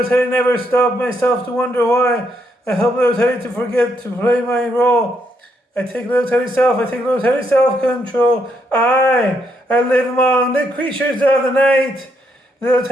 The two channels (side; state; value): both; normal; correlation 0.76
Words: Teddy never stopped myself to wonder why. I help little Teddy to forget to play my role. I take little Teddy's self-control. I live among the creatures of the night. Little